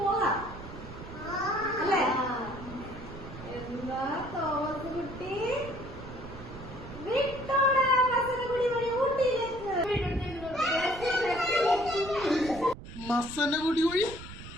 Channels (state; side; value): noise; right; rumble, 13 dB below the sound